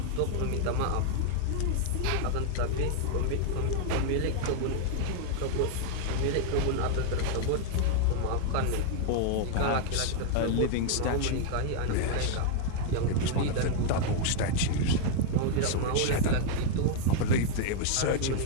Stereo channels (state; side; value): different; both; correlation 0.00